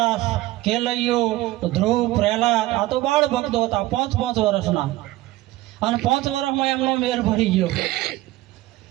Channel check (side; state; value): left; quieter; 17.4 dB